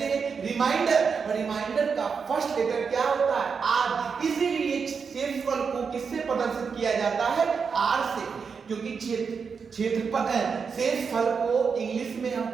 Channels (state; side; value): quieter; left; 5.8 dB